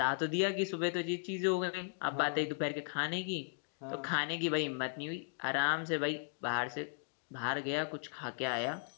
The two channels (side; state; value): right; silent; digital silence